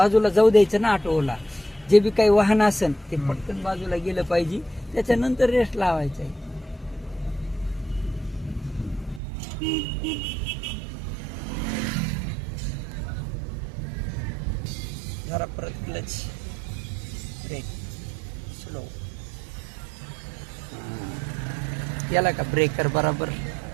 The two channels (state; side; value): drops out; left; at 9.2 s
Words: जाऊ द्यायचं ना ऑटोला. जे बी काही वाहन असेल ते पटकन बाजूला गेलं पाहिजे, त्याच्यानंतर रेस लावायचा आहे. जरा परत क्लच, ब्रेक, स्लो. याला का ब्रेकर बराबर